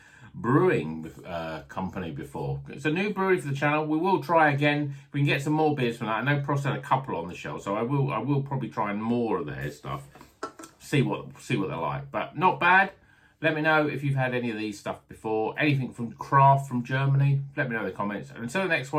Brewing Company before. It's a new brewery for the channel. We will try again. If we can get some more beers from that. I know Prost had a couple on the shelf, so I will probably try more of their stuff. See what they're like. But not bad. Let me know if you've had any of these stuff before. Anything from craft from Germany. Let me know in the comments. And until the next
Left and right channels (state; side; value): identical; both; correlation 1.00